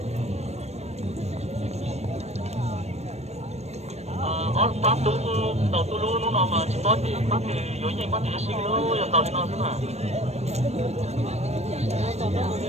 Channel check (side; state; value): left; late; 0.31 ms